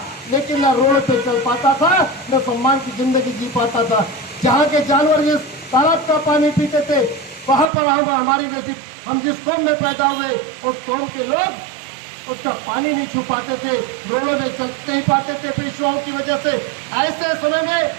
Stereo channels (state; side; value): drops out; left; at 7.7 s